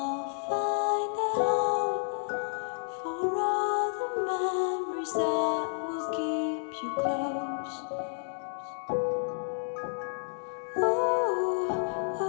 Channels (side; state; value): right; silent; digital silence